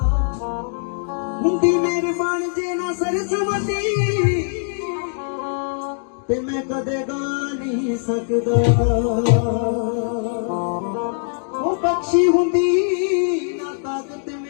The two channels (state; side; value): silent; right; digital silence